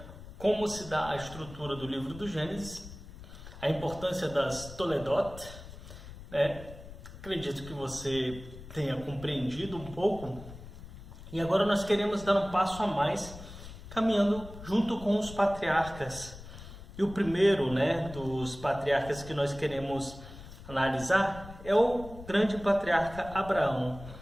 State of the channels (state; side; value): noise; left; rumble, 15 dB below the sound